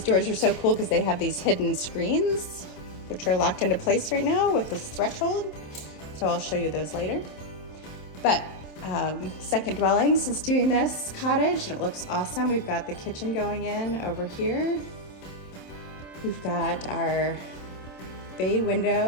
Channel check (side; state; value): right; late; 27 ms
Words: doors are so cool because they have these hidden screens, which are locked into place right now with this threshold. So I'll show you those later. But Second Dwellings is doing this cottage and it looks awesome. We've got the kitchen going in over here. We've got our bay